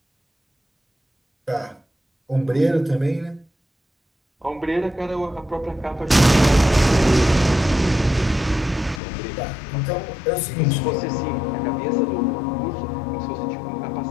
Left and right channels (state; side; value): drops out; right; at 9.0 s